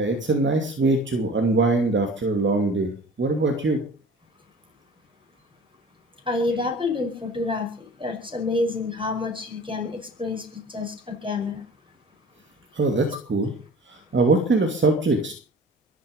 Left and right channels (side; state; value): both; normal; correlation 0.43